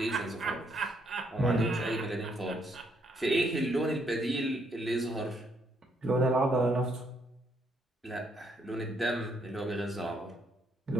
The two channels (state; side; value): normal; both; correlation 0.73